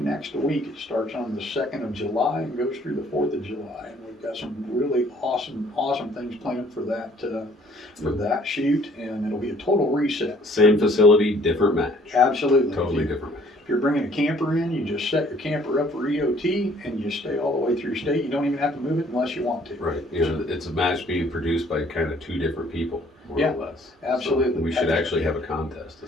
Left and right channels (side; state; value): both; normal; correlation 0.59